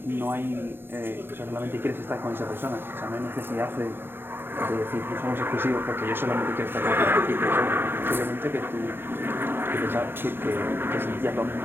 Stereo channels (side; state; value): left; late; 0.10 ms